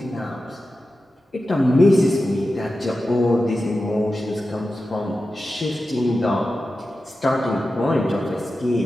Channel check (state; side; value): normal; both; correlation 0.92